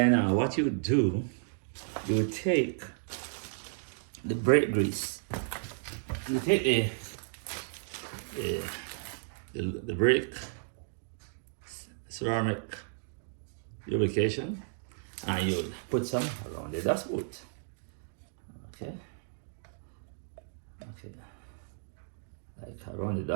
what you would do, you would take the brake grease. You take the brake ceramic lubrication, and you put some around the dust boot. Okay. Okay. Like around the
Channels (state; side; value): silent; left; digital silence